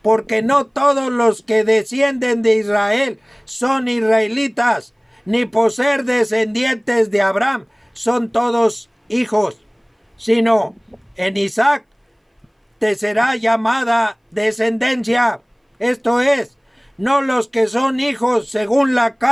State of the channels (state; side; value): identical; both; correlation 1.00